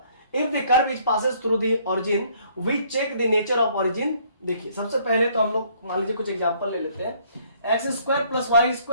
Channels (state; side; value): inverted; both; correlation -0.63